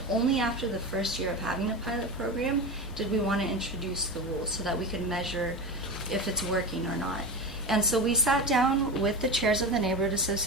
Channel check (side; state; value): right; noise; hum, 17 dB below the sound